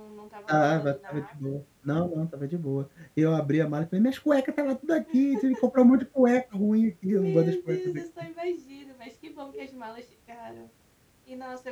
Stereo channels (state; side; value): identical; both; correlation 1.00